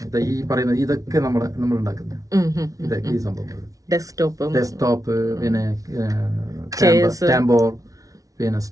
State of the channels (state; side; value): late; left; 0.17 ms